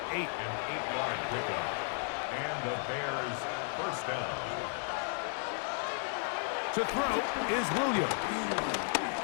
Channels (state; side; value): silent; right; 55 dB below the other